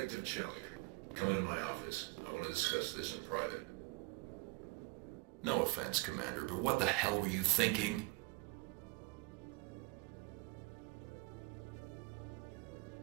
Chalik, come into my office. I want to discuss this in private. No offense, Commander, but what the hell were you thinking?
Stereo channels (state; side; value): quieter; left; 26.5 dB